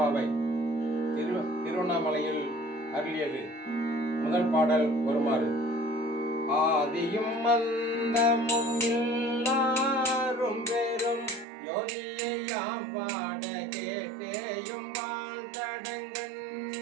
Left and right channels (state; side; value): drops out; left; at 11.5 s